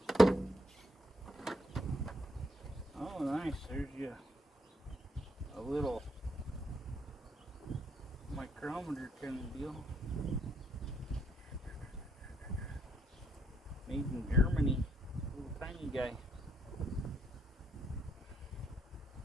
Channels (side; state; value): both; normal; correlation 0.72